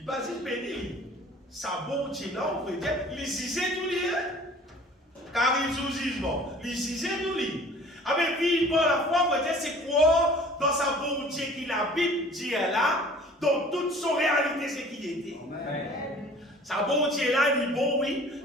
battait béni. Ça, bon Dieu là, on peut dire, il disait tout lui. Car il sous jugement. Il disait tout lui. Avec vivre par la foi, on peut dire, c'est quoi dans sa bon Dieu qui la Bible dit là, dans toute son réalité, c'est qui était. Amen. Sa bon Dieu là, il est bon, oui.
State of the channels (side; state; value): both; normal; correlation 0.48